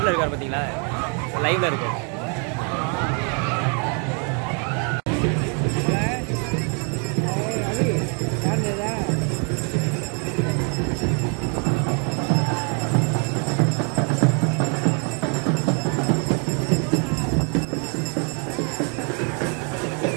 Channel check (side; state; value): left; quieter; 38.4 dB